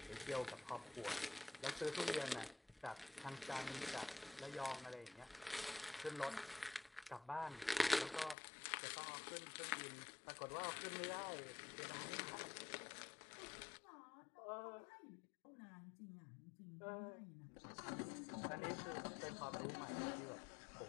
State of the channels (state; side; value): drops out; right; at 8.3 s